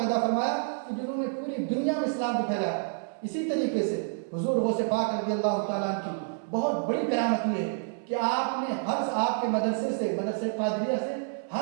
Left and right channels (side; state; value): left; silent; 59 dB below the other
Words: پیدا فرمایا کہ جنہوں نے پوری دنیا میں اسلام کو پھیلایا. اسی طریقے سے حضور غوث پاک رضی اللہ تعالیٰ کی بہت بڑی قیامت یہ ہے کہ آپ نے آپ کے مدرسے قادریہ سے